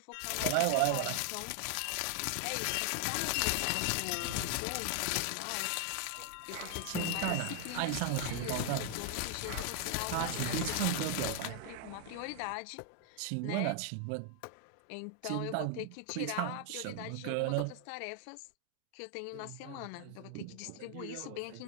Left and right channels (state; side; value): different; both; correlation 0.00